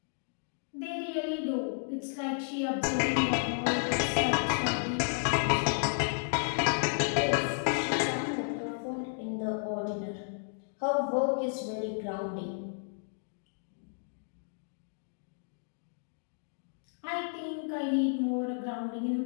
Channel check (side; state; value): right; silent; digital silence